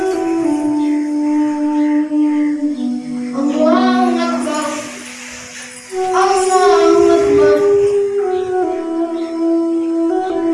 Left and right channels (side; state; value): both; identical; correlation 1.00